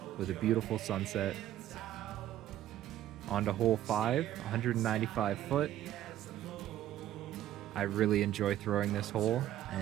with a beautiful sunset. On to hole 5, 195 foot. I really enjoy throwing this hole,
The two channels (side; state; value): left; quieter; 12.6 dB